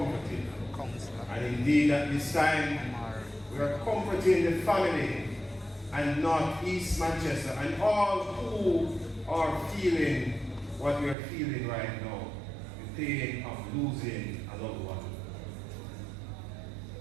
And indeed at this time, we are comforting the family and not East Manchester and all who are feeling what we are feeling right now, the pain of losing a loved one.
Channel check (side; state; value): left; drops out; at 11.2 s